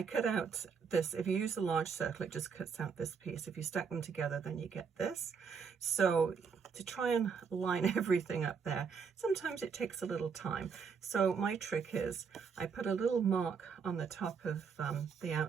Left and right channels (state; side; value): quieter; left; 6.0 dB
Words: cut out this. If you use a large circle, it just cuts out this piece. If you stack them together, then you get this. So to try and line everything up there, sometimes it takes a little time. So my trick is I put a little mark on the top of the